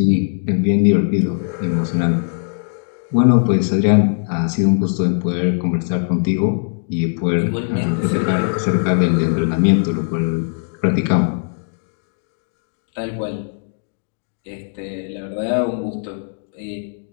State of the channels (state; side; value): silent; right; digital silence